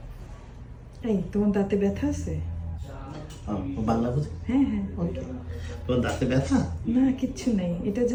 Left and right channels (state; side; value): identical; both; correlation 1.00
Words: এই তোমার দাঁতে ব্যথা আছে? বাংলা বুঝি? হ্যাঁ হ্যাঁ। ওকে। তোমার দাঁতে ব্যথা? না কিচ্ছু নেই, এটা